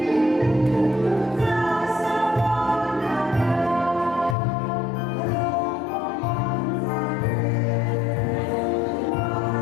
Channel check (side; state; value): right; drops out; at 4.4 s